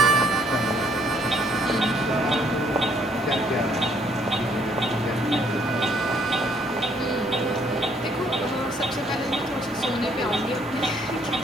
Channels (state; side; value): normal; both; correlation 0.65